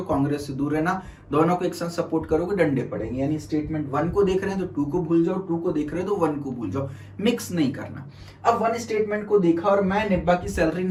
कांग्रेस से दूर रहना, दोनों को एक साथ सपोर्ट करोगे डंडे पड़ेंगे। यानी स्टेटमेंट 1 को देख रहे हैं तो 2 को भूल जाओ, 2 को देख रहे हो तो 1 को भूल जाओ, मिक्स नहीं करना। अब 1 स्टेटमेंट को देखा और मैं निब्बा की सैलरी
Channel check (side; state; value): both; identical; correlation 1.00